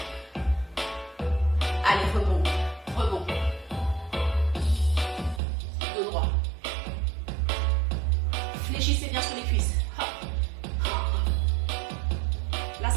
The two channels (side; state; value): left; drops out; at 5.4 s